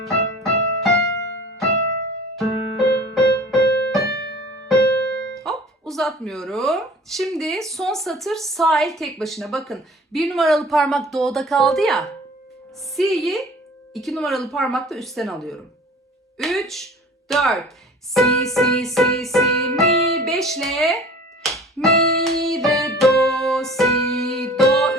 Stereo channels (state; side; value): normal; both; correlation 0.44